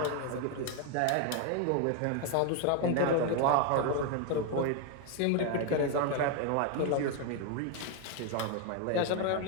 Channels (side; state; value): both; different; correlation 0.01